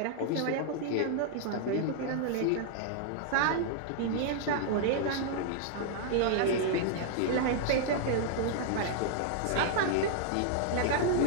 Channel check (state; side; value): different; both; correlation -0.01